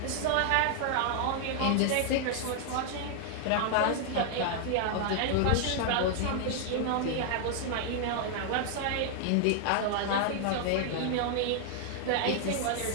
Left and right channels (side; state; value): both; different; correlation 0.00